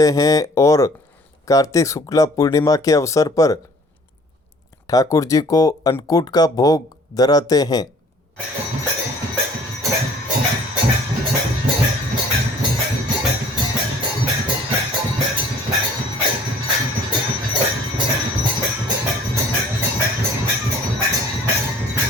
हैं और कार्तिक शुक्ला पूर्णिमा के अवसर पर ठाकुर जी को अन्नकूट का भोग धराते हैं।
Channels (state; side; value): normal; both; correlation 0.53